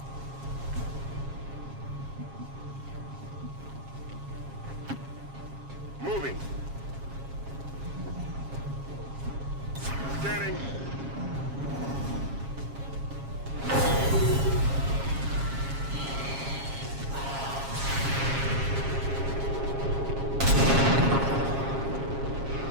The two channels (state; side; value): late; left; 7.4 ms